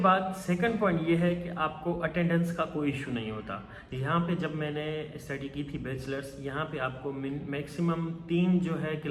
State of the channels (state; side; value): identical; both; correlation 1.00